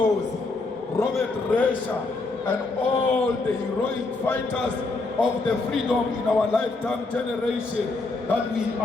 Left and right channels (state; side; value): quieter; right; 3.5 dB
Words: Robert Resha, and all the heroic fighters of the freedom in our lifetime generation, that we